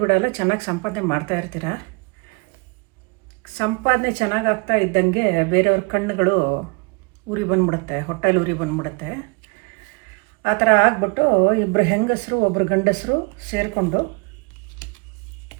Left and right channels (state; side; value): quieter; left; 33.6 dB